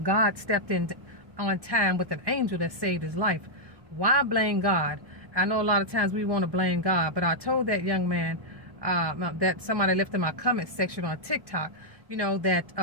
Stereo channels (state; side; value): late; left; 1.2 ms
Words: God stepped in on time with an angel that saved his life. Why blame God? I know a lot of times we want to blame God, but I told that young man that somebody left in my comment section on TikTok,